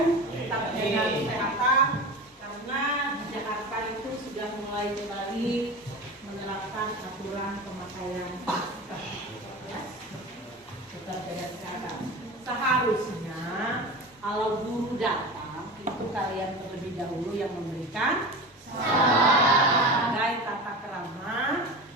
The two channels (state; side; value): normal; both; correlation 0.30